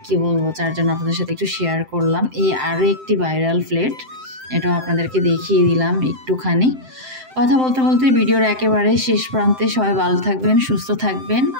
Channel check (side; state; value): left; late; 7.7 ms